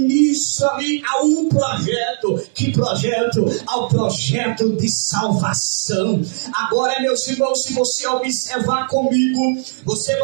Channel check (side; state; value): left; silent; 67 dB below the other